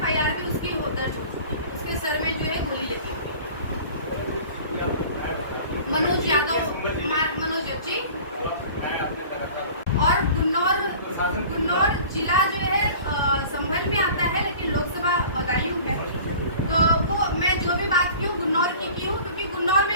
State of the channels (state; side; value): inverted; both; correlation -0.43